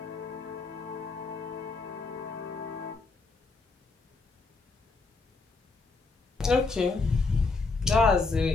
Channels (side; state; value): right; quieter; 3.9 dB